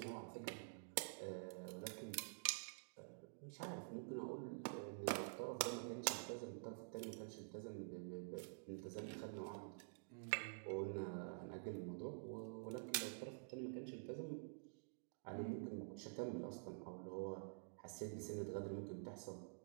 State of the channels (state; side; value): silent; left; digital silence